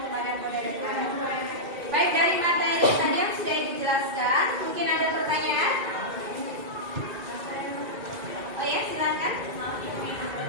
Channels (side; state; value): left; late; 2.3 ms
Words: qadar dan qadar. Baik, dari materi tadi yang sudah dijelaskan, mungkin ada pertanyaan? Oh ya, silakan.